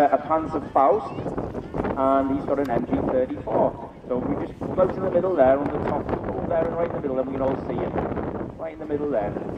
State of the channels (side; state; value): both; identical; correlation 1.00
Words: Panzer Faust, and he's got an MG34. So if we just close in the middle there, on the top, there and right in the middle, then we can all see him. Right in the middle there.